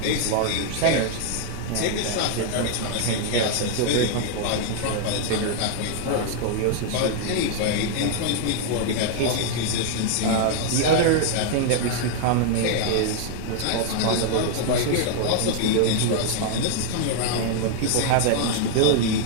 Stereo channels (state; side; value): different; both; correlation 0.00